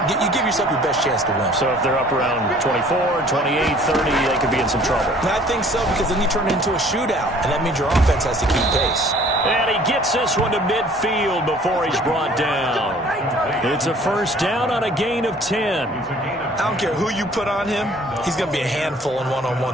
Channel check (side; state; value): both; normal; correlation 0.54